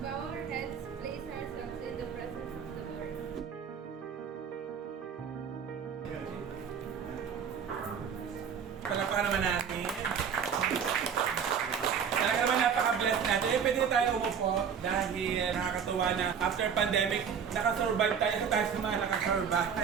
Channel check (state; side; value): quieter; left; 7.2 dB